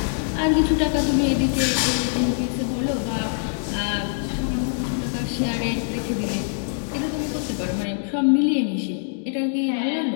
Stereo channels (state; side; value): silent; right; digital silence